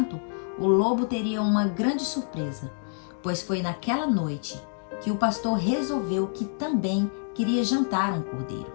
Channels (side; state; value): right; silent; digital silence